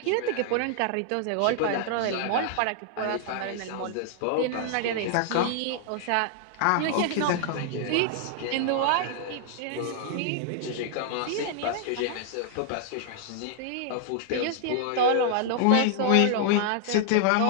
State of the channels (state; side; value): different; both; correlation -0.01